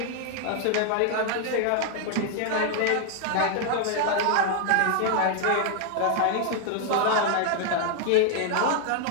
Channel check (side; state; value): both; different; correlation 0.00